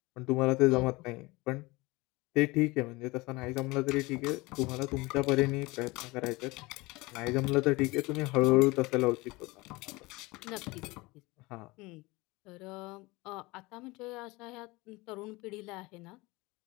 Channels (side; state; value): right; quieter; 22.8 dB